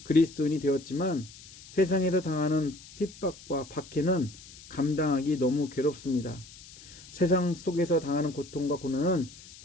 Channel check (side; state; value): left; noise; hiss, 19 dB below the sound